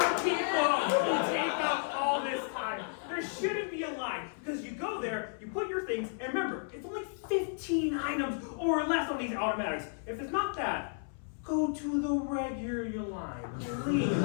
people who take up all this time. There shouldn't be a line because you go there, you put your things, and remember, it's only 15 items or less on these automatics. If it's not that, go to the regular line, please.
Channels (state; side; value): silent; right; 56 dB below the other